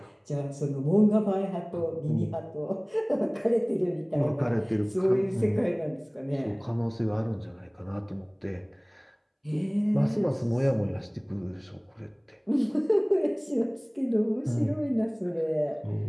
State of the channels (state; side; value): identical; both; correlation 1.00